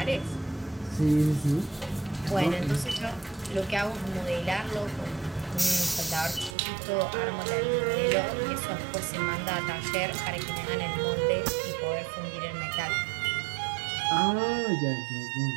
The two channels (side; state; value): left; drops out; at 6.6 s